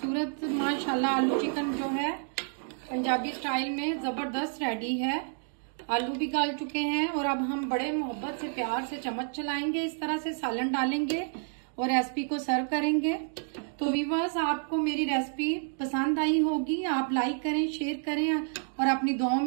माशाल्लाह आलू चिकन जो है पंजाबी स्टाइल में जबरदस्त रेडी है। आलू भी गाल चुके हैं और अब हम बड़े मोहब्बत से प्यार से चम्मच चलाएंगे, इस तरह से सालन डालेंगे और रेसिपी को सर्व करेंगे। तो व्यूअर्स आपको मेरी रेसिपी पसंद आई होगी, आप लाइक करें, शेयर करें और अपनी दुआओं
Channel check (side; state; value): left; silent; 58 dB below the other